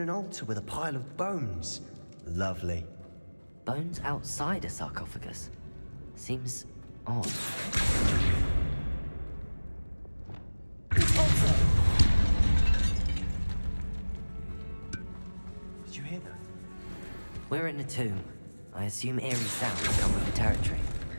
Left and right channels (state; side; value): inverted; both; correlation -1.00